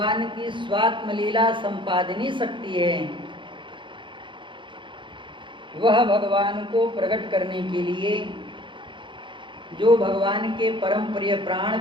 की स्वात्म लीला संपादनी शक्ति है, वह भगवान को प्रकट करने के लिए जो भगवान के परम प्रिय प्राण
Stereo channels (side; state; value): left; late; 0.24 ms